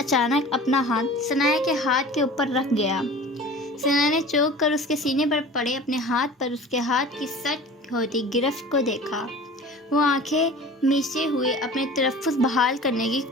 अपना हाथ सनाया के हाथ के ऊपर रख गया। सनाया ने चौंक कर उसके सीने पर पड़े अपने हाथ पर उसके हाथ की सट होती गिरफ्त को देखा। वो आंखें मीचे हुए अपने तलफ़्फ़ुज़ बहाल करने की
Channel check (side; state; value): both; normal; correlation 0.40